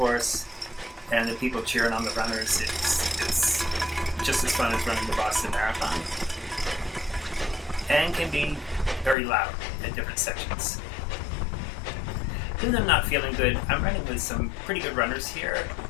and the people cheering on the runners. It's just as fun as running the Boston Marathon. And can be very loud at different sections. Even though I'm not feeling good, I'm running with some pretty good runners here.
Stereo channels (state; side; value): drops out; right; at 9.2 s